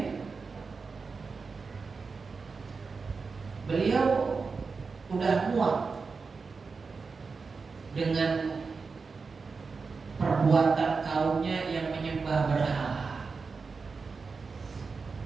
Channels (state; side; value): quieter; left; 4.7 dB